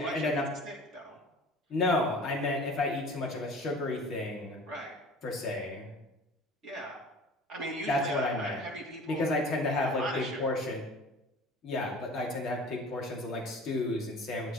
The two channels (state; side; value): normal; both; correlation 0.43